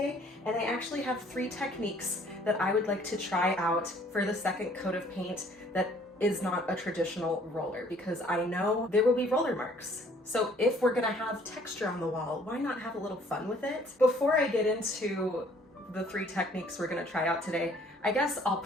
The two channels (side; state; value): both; normal; correlation 0.59